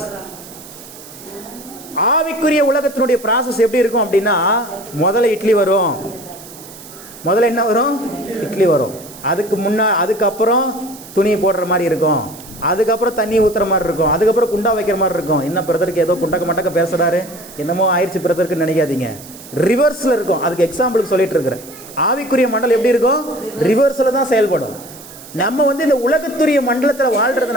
ஆவிக்குரிய உலகத்தினுடைய ப்ராசஸ் எப்படி இருக்கும் அப்படின்னா, முதல்ல இட்லி வரும். முதல்ல என்ன வரும்? இட்லி வரும். அதுக்கப்புறம் துணி போடுற மாதிரி இருக்கும். அதுக்கப்புறம் தண்ணி ஊற்றுற மாதிரி இருக்கும். அதுக்கப்புறம் குண்டா வைக்கிற மாதிரி இருக்கும். என்ன பிரதருக்கு ஏதோ குண்டக்க மட்டக்க பேசுகிறாரு, என்னமோ ஆயிடுச்சு பிரதருக்குன்னு நினைக்காதீங்க. ரிவர்ஸில் இருக்கும். அதுக்கு எக்ஸாம்பிளுக்கு சொல்லிட்டு இருக்கிறேன். ஆவிக்குரிய மண்டலம் எப்படி இருக்கும்? ரிவர்ஸில் தான் செயல்படும். நம்ம இந்த உலகத்துரிய மண்டலத்தில்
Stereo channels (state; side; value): noise; right; hiss, 18 dB below the sound